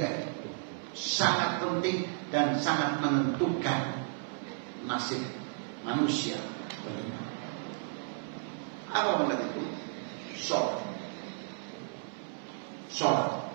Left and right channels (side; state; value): left; silent; 56 dB below the other